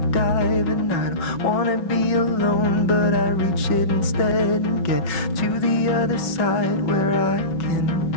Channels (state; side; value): late; right; 5.4 ms